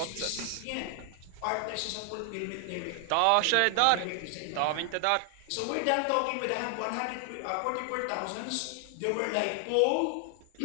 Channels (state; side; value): different; both; correlation 0.00